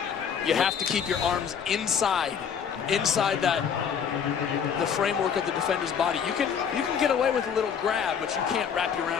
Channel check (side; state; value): right; quieter; 7.4 dB